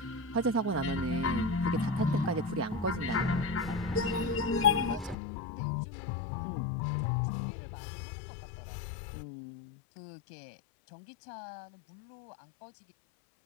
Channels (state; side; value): drops out; right; at 5.2 s